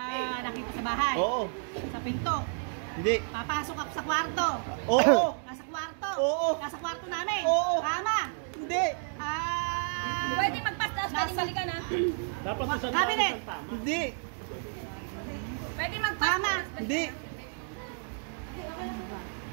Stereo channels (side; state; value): left; silent; 57 dB below the other